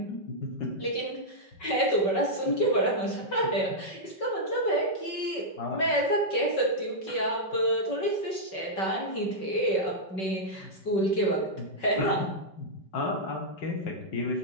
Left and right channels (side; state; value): right; late; 5.3 ms